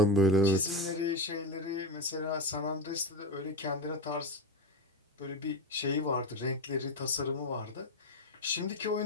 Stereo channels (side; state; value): both; normal; correlation 0.15